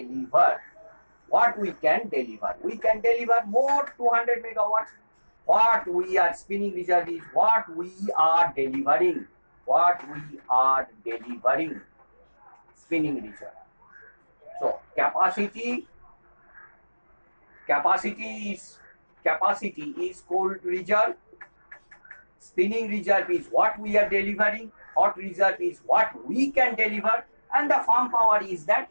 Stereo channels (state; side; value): inverted; both; correlation -1.00